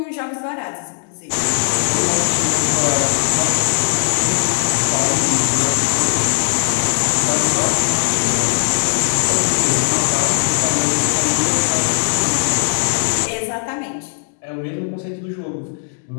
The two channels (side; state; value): right; silent; digital silence